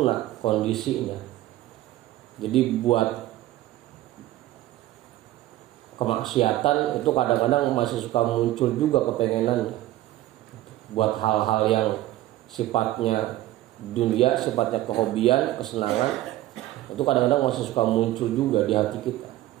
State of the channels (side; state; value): left; quieter; 15.4 dB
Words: kondisinya, jadi buat kemaksiatan itu kadang-kadang masih suka muncul juga kepengenannya. Buat hal-hal yang sifatnya dunia, sifatnya kehobian, kesenangan, itu kadang-kadang masih suka muncul juga di hati kita.